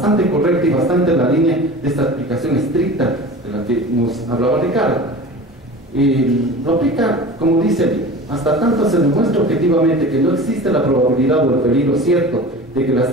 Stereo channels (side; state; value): both; normal; correlation 0.36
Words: correcta y bastante en la línea de esta aplicación estricta de la que nos hablaba Ricardo. Lo aplica, como dice, hasta tanto se demuestra objetivamente que no existe la probabilidad o el peligro cierto de que las